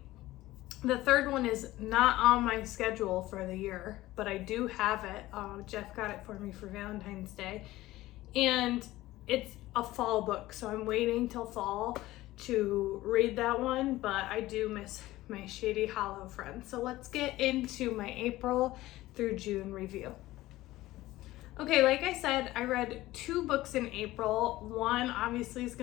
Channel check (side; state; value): right; quieter; 17.0 dB